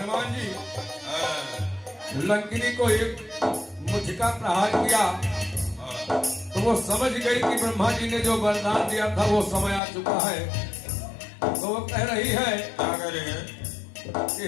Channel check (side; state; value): right; drops out; at 9.8 s